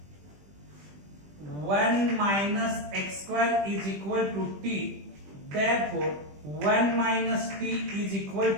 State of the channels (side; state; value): left; late; 20 ms